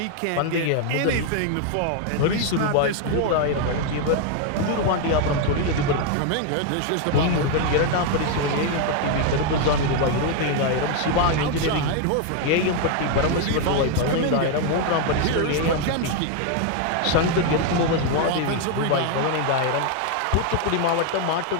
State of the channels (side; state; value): both; different; correlation 0.01